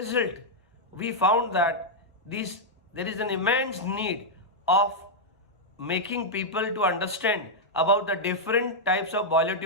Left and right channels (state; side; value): normal; both; correlation -0.04